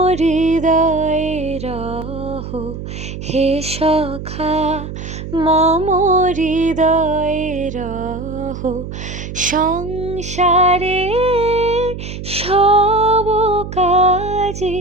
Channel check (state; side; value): noise; right; hum, 9 dB below the sound